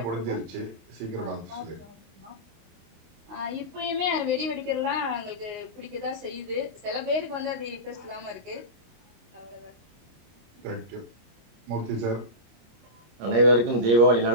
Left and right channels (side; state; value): left; late; 25 ms